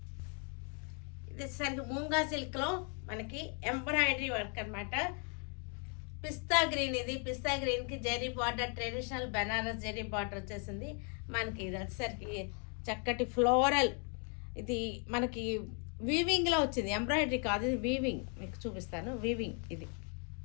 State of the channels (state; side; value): quieter; right; 39.9 dB